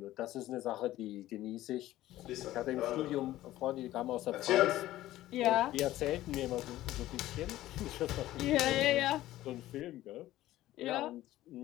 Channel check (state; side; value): quieter; right; 15.1 dB